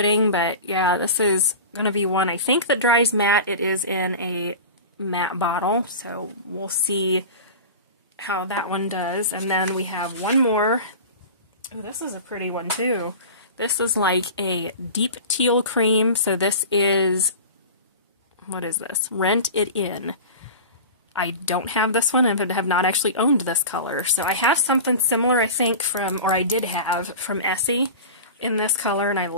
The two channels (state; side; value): inverted; both; correlation -0.33